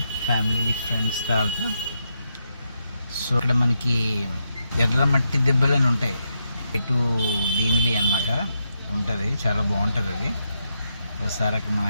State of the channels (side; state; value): both; inverted; correlation -0.82